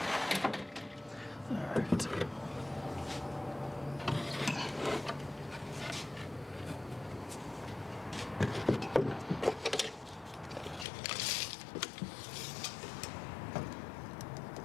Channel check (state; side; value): drops out; right; at 10.9 s